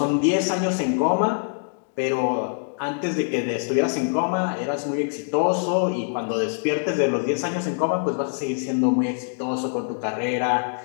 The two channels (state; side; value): silent; right; digital silence